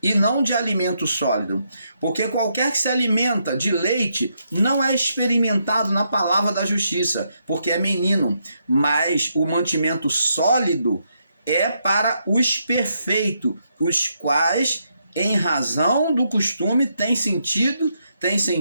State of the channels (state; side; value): inverted; both; correlation -0.78